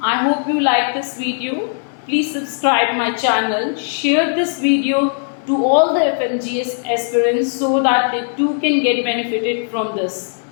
I hope you like this video. Please subscribe my channel, share this video to all the FMGS aspirants so that they too can get benefited from this.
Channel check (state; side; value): silent; right; digital silence